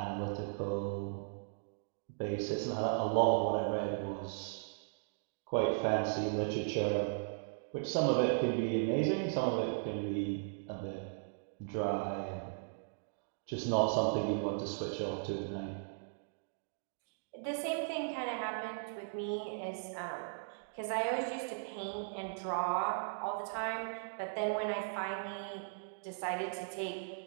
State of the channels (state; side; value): silent; left; digital silence